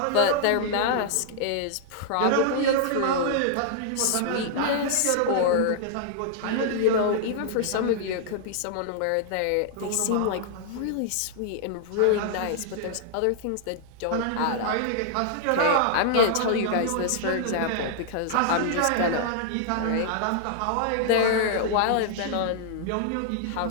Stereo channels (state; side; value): different; both; correlation -0.01